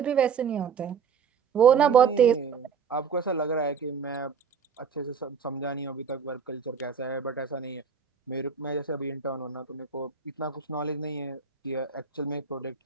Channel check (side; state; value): left; quieter; 6.3 dB